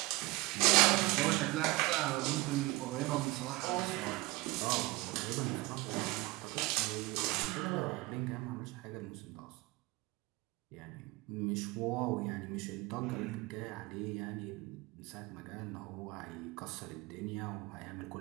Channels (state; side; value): quieter; left; 21.7 dB